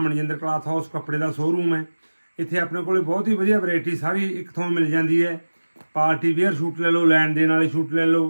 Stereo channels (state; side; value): inverted; both; correlation -1.00